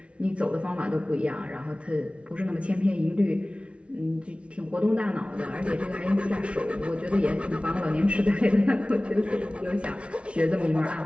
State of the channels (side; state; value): left; late; 0.060 ms